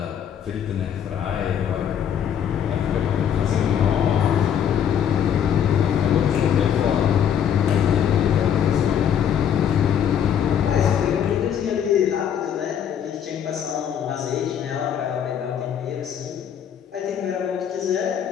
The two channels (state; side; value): quieter; right; 8.8 dB